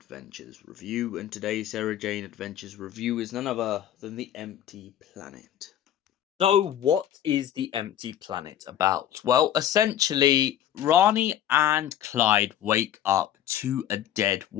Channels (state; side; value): quieter; right; 11.3 dB